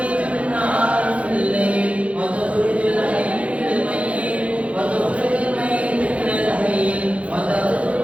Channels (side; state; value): left; late; 0.063 ms